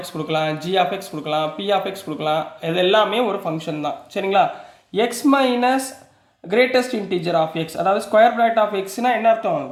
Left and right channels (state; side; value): identical; both; correlation 1.00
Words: x கொடுக்கலாம், g of x கொடுக்கலாம், p of x கொடுக்கலாம், இது எல்லாமே ஒரு ஃபங்க்ஷன் தான். சரிங்களா, x minus greatest integer of x, அதாவது ஸ்கொயர் பிராக்கெட் ஆஃப் எக்ஸ்னால் என்ன அர்த்தம்,